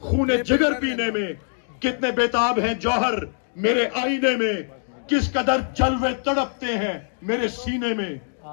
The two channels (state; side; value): silent; right; 63 dB below the other